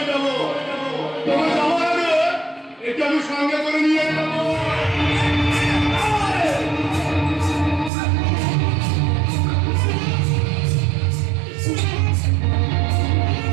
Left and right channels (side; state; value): left; drops out; at 7.9 s